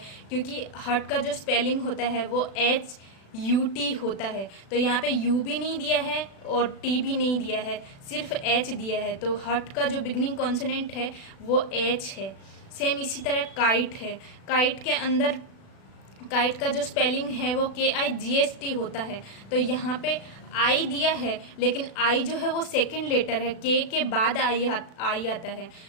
क्योंकि हट का जो स्पेलिंग होता है वो एच यू टी होता है। तो यहाँ पे यू भी नहीं दिया है और टी भी नहीं दिया है, सिर्फ एच दिया है। तो हट का जो बिगनिंग कॉन्सोनेंट है वो एच है। सेम इसी तरह काइट है। काइट के अंदर काइट का जो स्पेलिंग है वो KIGST होता है। तो यहाँ पे आई दिया है, लेकिन आई जो है वो सेकंड लेटर है, के बाद आई आता है।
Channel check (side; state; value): right; late; 36 ms